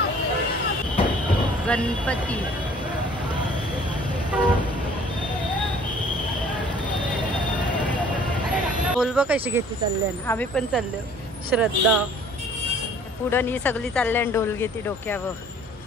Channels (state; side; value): normal; both; correlation 0.54